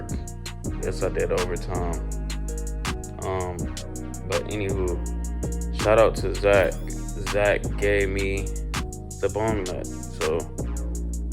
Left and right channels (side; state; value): both; identical; correlation 1.00